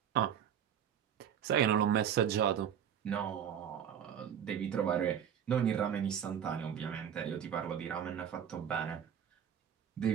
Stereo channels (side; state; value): left; quieter; 8.9 dB